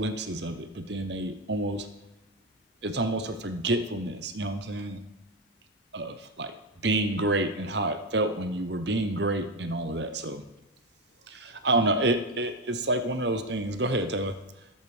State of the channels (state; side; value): normal; both; correlation 0.12